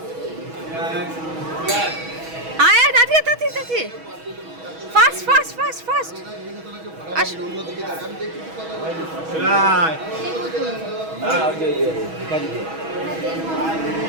আয় দাদি দাদি দাদি, fast fast fast fast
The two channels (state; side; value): late; left; 6.2 ms